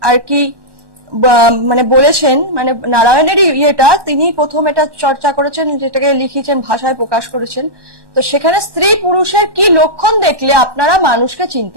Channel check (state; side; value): late; left; 1.2 ms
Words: আর কি মানে বলেছেন, মানে নারায়ণেরই ইয়েটা তিনি প্রথম এটা চর্চা করেছেন, যেটাকে লিখেছেন ভাষায় প্রকাশ করেছেন। তো সেখানে স্ত্রী পুরুষের কি লক্ষণ দেখলে আপনারা মানুষকে